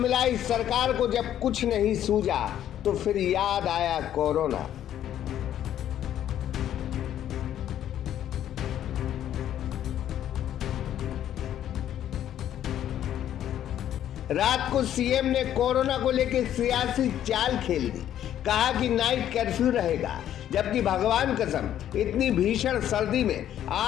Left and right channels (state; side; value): quieter; right; 11.1 dB